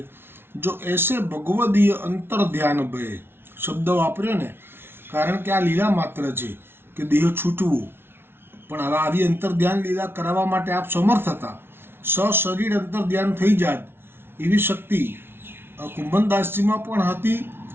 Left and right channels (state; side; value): late; left; 0.11 ms